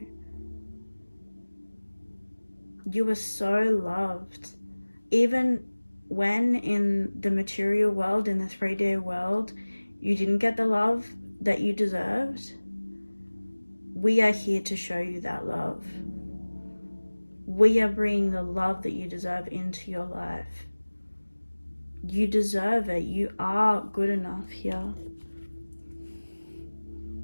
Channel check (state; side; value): inverted; both; correlation -1.00